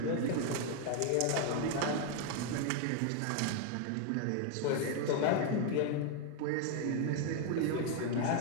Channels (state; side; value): different; both; correlation 0.01